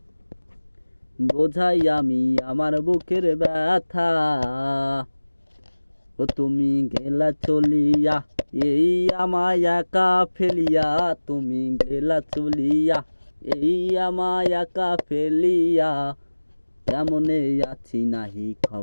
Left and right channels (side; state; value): both; inverted; correlation -1.00